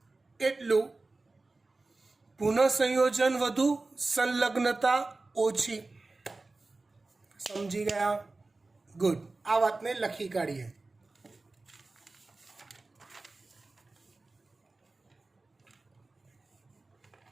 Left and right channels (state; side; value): quieter; left; 3.4 dB